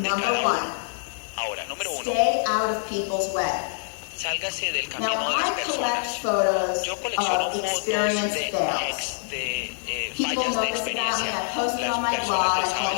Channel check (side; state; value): right; silent; 60 dB below the other